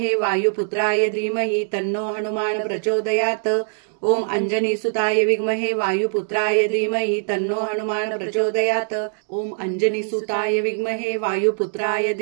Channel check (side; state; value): left; silent; digital silence